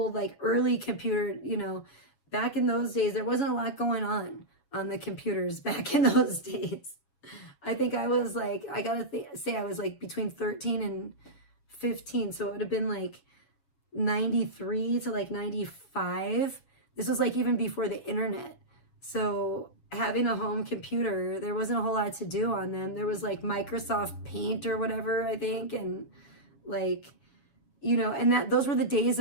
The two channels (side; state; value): right; late; 7.2 ms